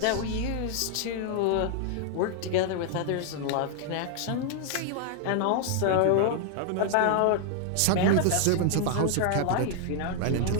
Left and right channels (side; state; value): both; different; correlation 0.00